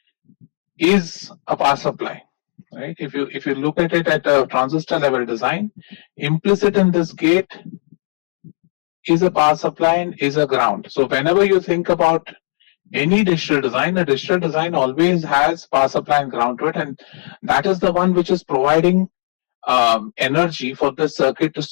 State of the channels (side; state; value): right; silent; 59 dB below the other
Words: is a power supply. Right? If you look at it at a transistor level design, implicit in this gate is a power supply and is a ground. So whenever you think about any digital design, a digital design always has power supply and ground to it, and that is the one which is providing energy for the circuit to